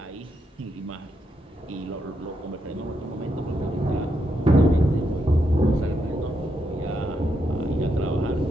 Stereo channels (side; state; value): both; normal; correlation 0.81